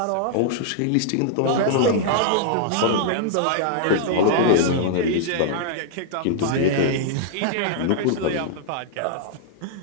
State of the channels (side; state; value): both; different; correlation -0.01